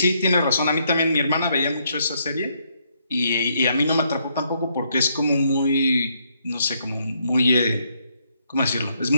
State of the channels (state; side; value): inverted; both; correlation -0.74